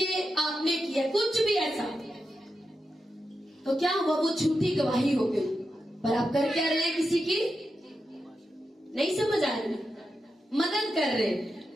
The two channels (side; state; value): both; normal; correlation 0.88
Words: ये आपने किया, कुछ भी ऐसा, तो क्या हुआ, वो झूठी गवाही हो गई। पर आप कर क्या रहे हैं, किसी की नहीं समझ आ रही, मदद कर रहे,